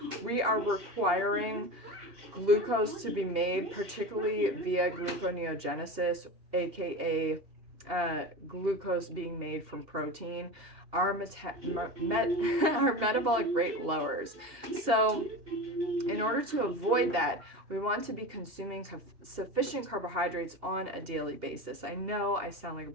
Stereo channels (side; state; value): left; late; 2.8 ms